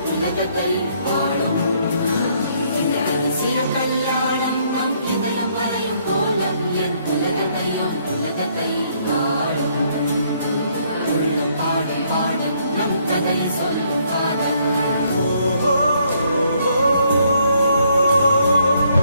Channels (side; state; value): both; inverted; correlation -0.69